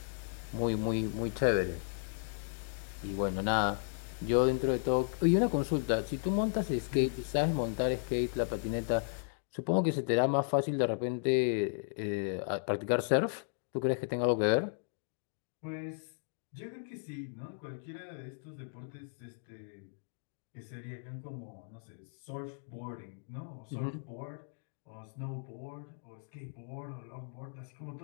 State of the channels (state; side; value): silent; right; digital silence